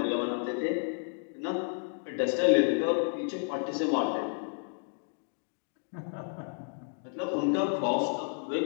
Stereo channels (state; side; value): silent; right; 57 dB below the other